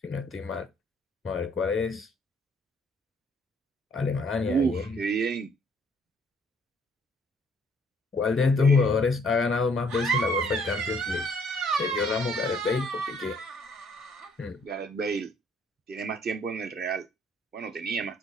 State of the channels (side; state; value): both; normal; correlation 0.63